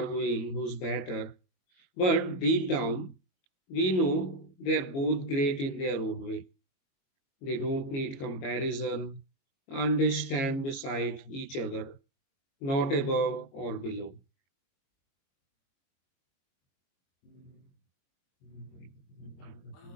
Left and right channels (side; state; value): right; late; 22 ms